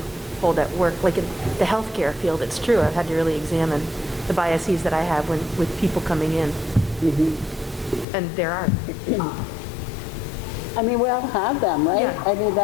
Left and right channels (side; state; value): right; drops out; at 8.1 s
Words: hold at work, like in the healthcare field, it's true. I've had to really examine the biases that I have with people coming in. Mm-hmm. And there are. I mean, we all have them, right? Yeah. I mean,